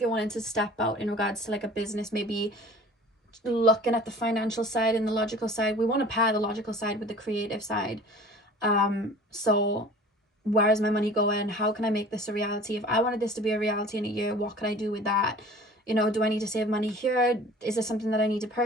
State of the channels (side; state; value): both; normal; correlation 0.45